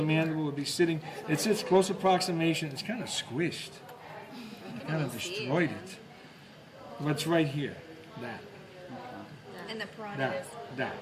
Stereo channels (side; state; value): both; identical; correlation 1.00